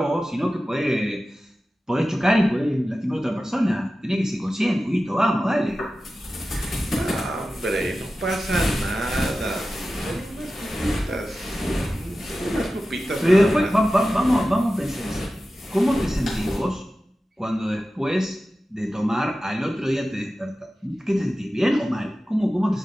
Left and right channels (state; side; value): normal; both; correlation 0.94